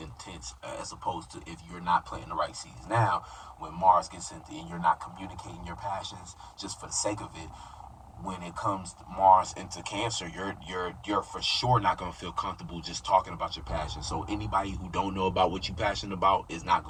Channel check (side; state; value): both; identical; correlation 1.00